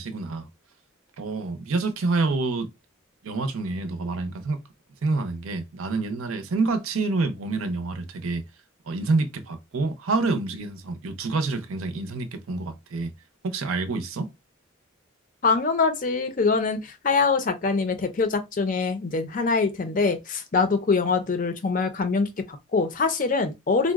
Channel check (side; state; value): both; normal; correlation 0.30